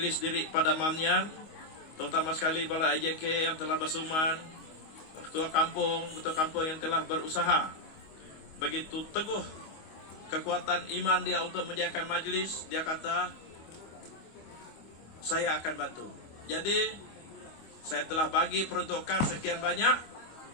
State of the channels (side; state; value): right; late; 25 ms